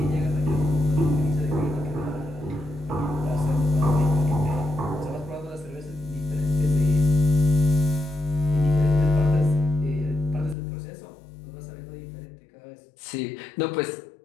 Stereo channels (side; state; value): right; drops out; at 10.6 s